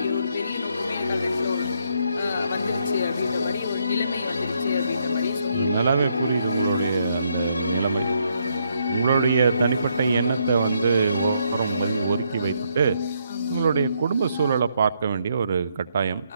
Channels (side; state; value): both; inverted; correlation -0.75